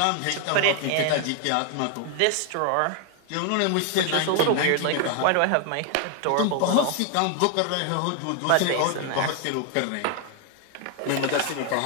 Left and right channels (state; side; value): different; both; correlation 0.00